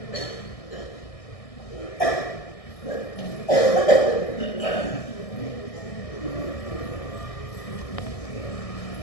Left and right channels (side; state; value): right; late; 1.6 ms